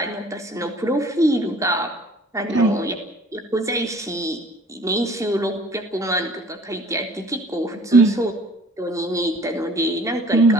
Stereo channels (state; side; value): normal; both; correlation 0.52